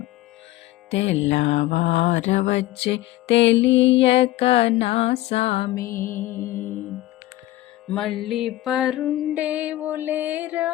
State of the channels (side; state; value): right; quieter; 16.5 dB